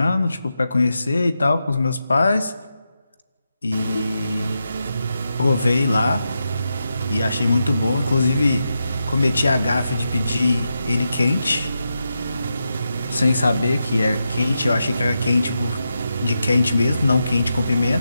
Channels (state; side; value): inverted; both; correlation -0.87